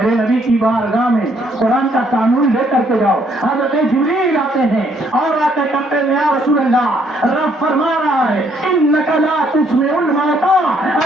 نبی کی بارگاہ میں قرآن کا قانون لے کر کے جاؤ۔ حضرت جبریل آتے ہیں اور آتے کہتے ہیں یا رسول اللہ، رب فرما رہا ہے انک لا تسمع الموتى،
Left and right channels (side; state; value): both; normal; correlation 0.68